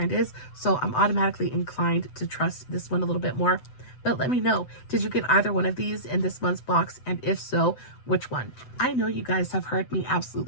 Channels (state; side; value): late; right; 7.9 ms